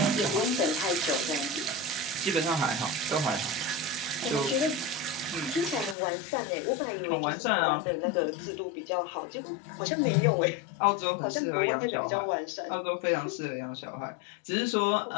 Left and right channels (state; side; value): drops out; right; at 6.0 s